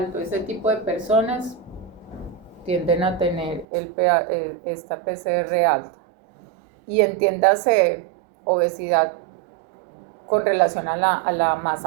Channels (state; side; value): drops out; left; at 3.7 s